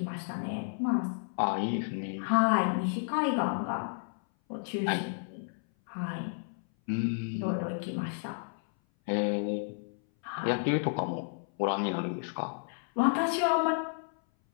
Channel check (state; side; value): silent; right; 57 dB below the other